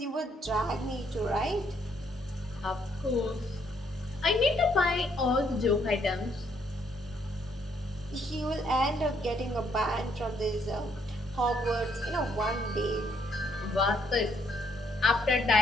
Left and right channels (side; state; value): both; normal; correlation 0.70